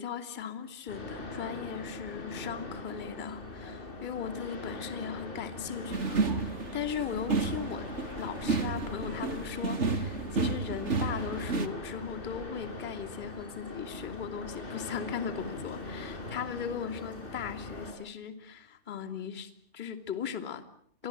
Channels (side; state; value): left; late; 2.3 ms